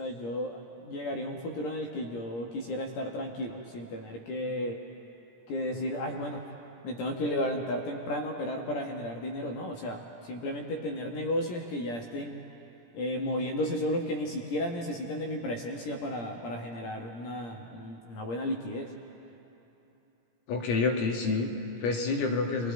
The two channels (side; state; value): right; late; 17 ms